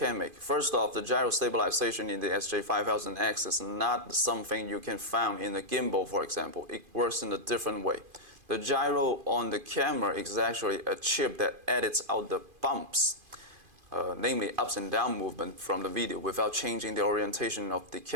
make? First off, the gyro stabilization in the SJ5000X is not something you can find in a gimbal, for example. It works in a different way. The gyro on the camera is actually a chip that edits out the bumps, namely ups and down movement from the video without changing the orientation of the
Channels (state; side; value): late; left; 2.5 ms